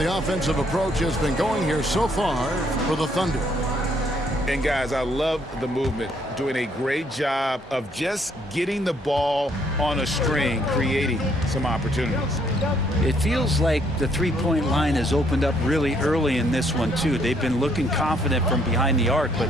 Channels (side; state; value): both; normal; correlation 0.68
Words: offensive approach has been going here so far for the Thunder. And guys, I love the movement, doing a great job of just getting the ball on a string, creating some opportunities. It feels like the three-point line has opened up really early in this one, too. They've been looking confident from behind the arc, but